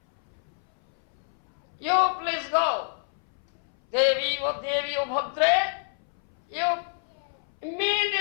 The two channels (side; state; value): right; silent; 60 dB below the other